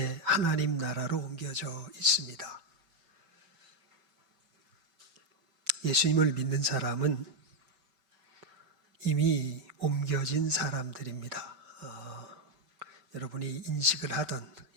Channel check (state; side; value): late; left; 5.3 ms